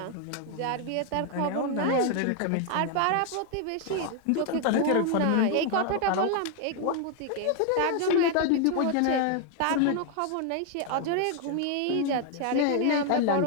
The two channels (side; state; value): both; different; correlation 0.00